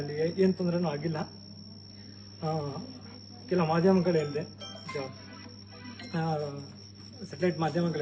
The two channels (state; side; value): identical; both; correlation 1.00